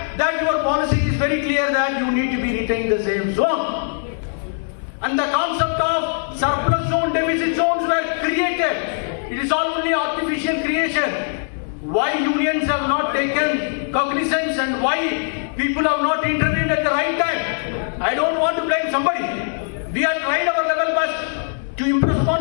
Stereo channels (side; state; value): right; silent; digital silence